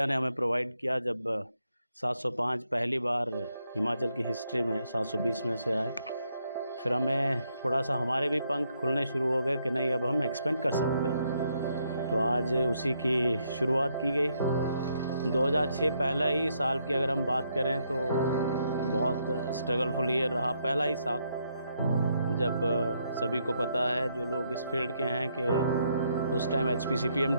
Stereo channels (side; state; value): both; inverted; correlation -0.75